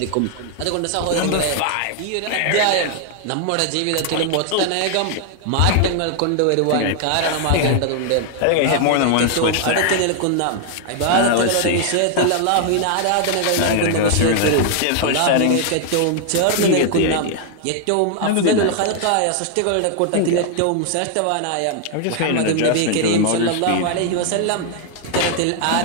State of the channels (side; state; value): both; different; correlation 0.00